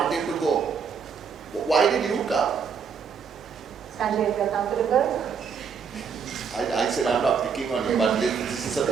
to go? Why did you come? Sanjay, if you're comfortable. I said I'm not picking on you, but this is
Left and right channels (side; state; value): left; quieter; 6.4 dB